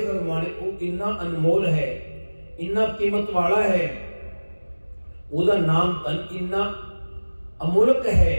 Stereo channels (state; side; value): inverted; both; correlation -1.00